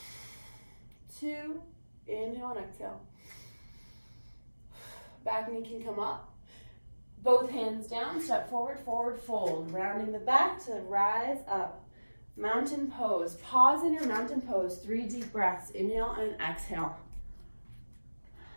2. Inhale and exhale. Back knee can come up. Both hands down. Step forward, forward fold. Rounding the back to rise up. Mountain pose. Pause in your mountain pose. 3 deep breaths. Inhale and exhale.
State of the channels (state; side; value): inverted; both; correlation -1.00